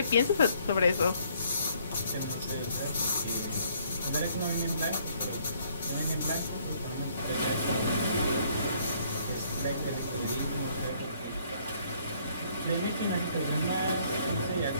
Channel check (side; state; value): both; inverted; correlation -0.64